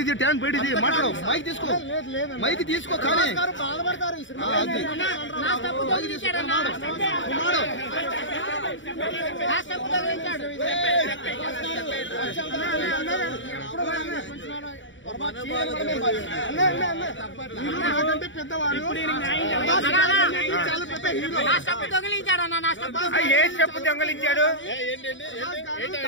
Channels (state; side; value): late; right; 0.55 ms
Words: tank బయటిది మాట్లాడు mic తీసుకో mic తీసుకో కానీ పెద్దవాడు ఏ చెప్పు దొంగలించాడు